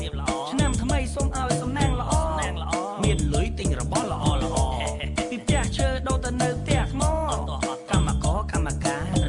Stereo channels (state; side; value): identical; both; correlation 1.00